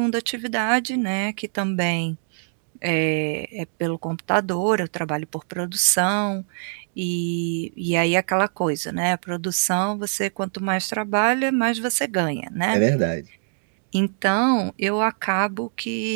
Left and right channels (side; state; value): left; silent; digital silence